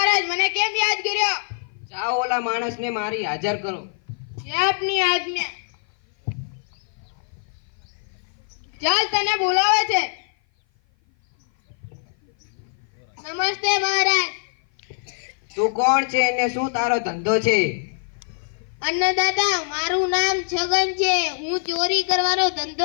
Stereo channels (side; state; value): right; silent; 56 dB below the other